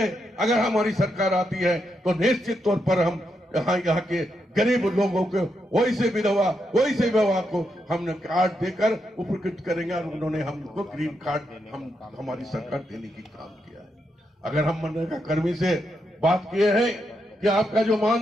अगर हमारी सरकार आती है तो निश्चित तौर पर हम यहाँ के गरीब लोगों को वैसे विधवा को हमने कार्ड देकर उपकृत करेंगे और उन्होंने हमको ग्रीन कार्ड हमारी सरकार देने की काम किया है। अगर हम मनरेगा कर्मी से बात किए हैं कि आपका जो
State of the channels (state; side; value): normal; both; correlation 0.82